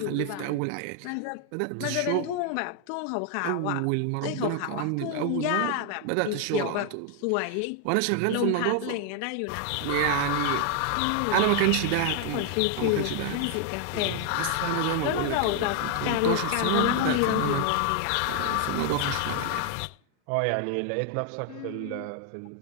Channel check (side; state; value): both; different; correlation 0.00